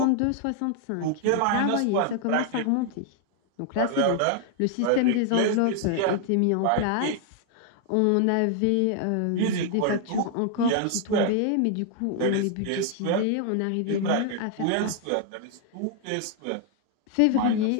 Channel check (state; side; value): different; both; correlation 0.00